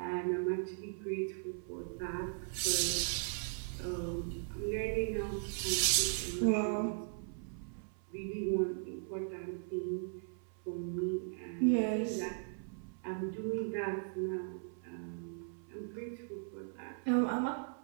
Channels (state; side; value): silent; left; 52 dB below the other